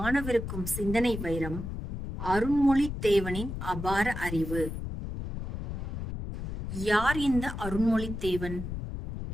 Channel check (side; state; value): left; noise; rumble, 6 dB below the sound